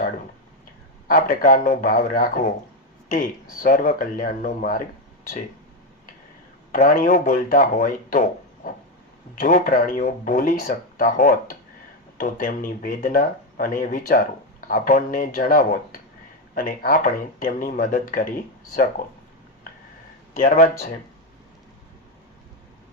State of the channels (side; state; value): both; normal; correlation 0.08